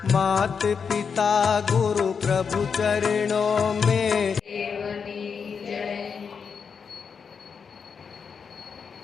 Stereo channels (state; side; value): quieter; right; 6.1 dB